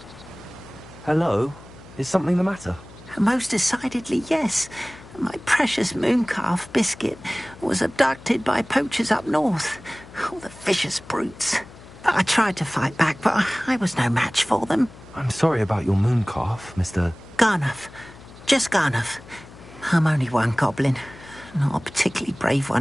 Hello? Is something the matter? Most decidedly, yes. My precious mooncalf, Biscuit, was abducted by poachers up north. All the vicious brutes. I tried to fight back, but I was no match for them. I'm sorry about your mooncalf, Mr. Garnuff. Just Garnuff. I'm only one goblin. Not a particularly brave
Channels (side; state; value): left; noise; hum, 20 dB below the sound